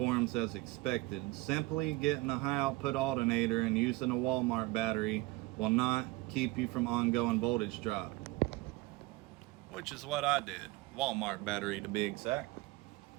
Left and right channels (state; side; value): quieter; left; 21.6 dB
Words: as expected. Simply getting a high output alternator and using a Walmart battery will not keep you from ongoing voltage drop. Which is what I did. Walmart battery to be exact.